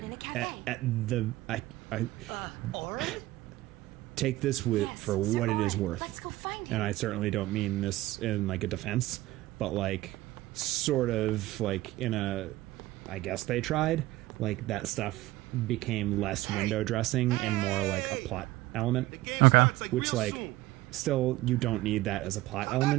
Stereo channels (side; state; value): left; quieter; 17.6 dB